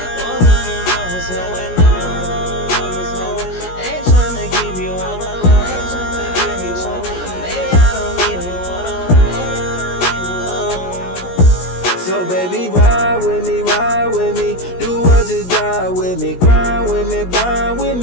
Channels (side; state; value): right; late; 17 ms